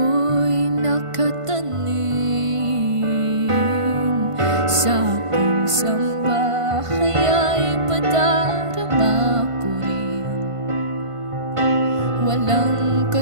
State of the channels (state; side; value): late; left; 1.5 ms